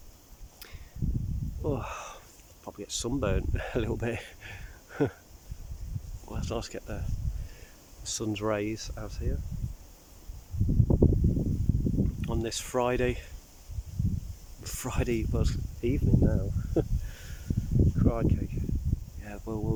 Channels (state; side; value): identical; both; correlation 1.00